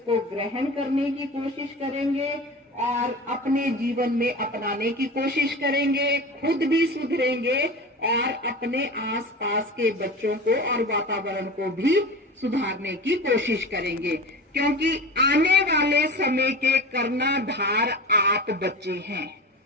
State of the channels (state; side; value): normal; both; correlation 0.32